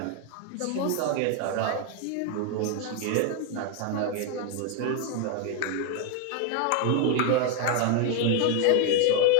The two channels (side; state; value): both; different; correlation 0.00